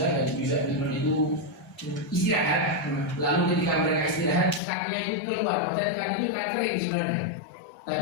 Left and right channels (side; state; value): right; drops out; at 4.6 s